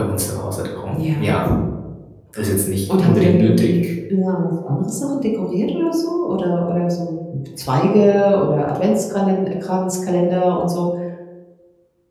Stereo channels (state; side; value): identical; both; correlation 1.00